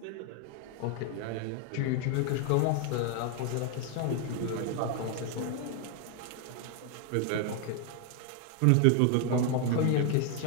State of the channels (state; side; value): different; both; correlation 0.00